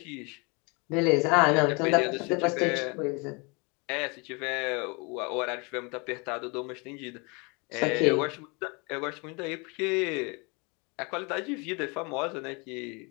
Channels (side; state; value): right; quieter; 30.2 dB